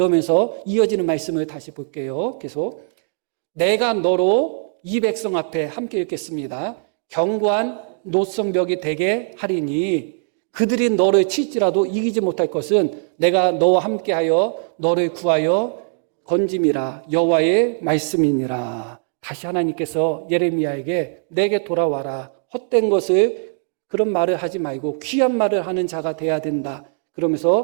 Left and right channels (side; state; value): left; silent; digital silence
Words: 이어지는 말씀을 다시 볼게요. 계속. 내가 너로 이 백성 앞에 함께 읽겠습니다. 견고한 노성벽이 되게 하리니 그들이 너를 칠지라도 이기지 못할 것은 내가 너와 함께하여 너를 구하여 건짐이라 여호와의 말씀이니라. 다시 하나님께서 예레미야에게 내게 돌아와라. 헛된 것을 그런 말을 하지 말고 귀한 말을 하는 자가 돼야 된다.